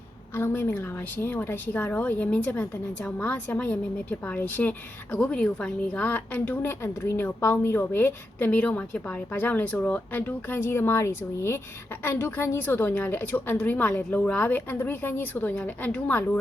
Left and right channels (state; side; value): normal; both; correlation 0.87